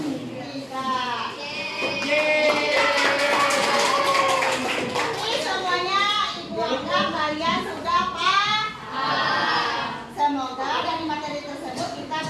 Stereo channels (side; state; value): both; identical; correlation 1.00